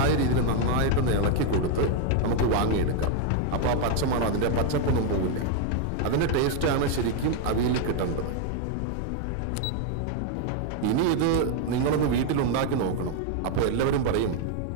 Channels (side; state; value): both; different; correlation 0.01